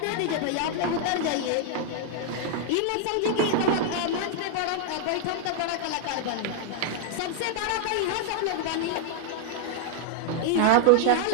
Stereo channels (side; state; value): both; different; correlation 0.00